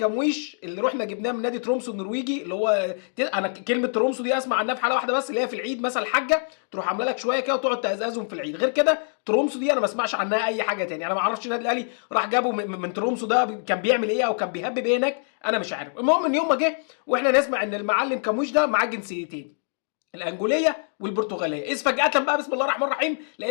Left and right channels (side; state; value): right; silent; digital silence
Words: اللي رحنا جبناه من نادي ترومسو النرويجي، اللي هو انا كلمه ترومسو دي اسمع عنها في حاله واحده بس، اللي هي في العيد مثلا الحاجه تروح عامله لك شويه كده وتقعد تهزهم في العيد. غير كده ترومسو دي انا ما اسمعش عنها اي حاجه تاني. انا ما اعرفش النادي الاهلي راح جابه من ترومسو ده كان بيعمل ايه او كان بيهبب ايه هناك، انا مش عارف. المهم ان يوم ما جه واحنا نسمع ان المعلم كموش ده معاه جنسيتين، الانجوليه والبرتغاليه، اذ فجاه بقى بسم الله الرحمن الرحيم